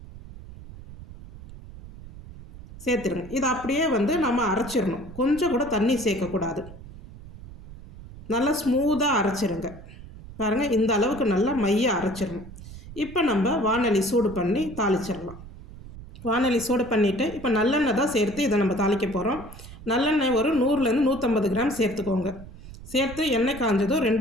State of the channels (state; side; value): noise; right; rumble, 16 dB below the sound